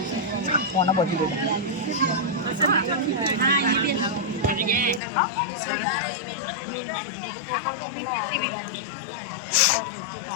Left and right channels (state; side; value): drops out; right; at 5.0 s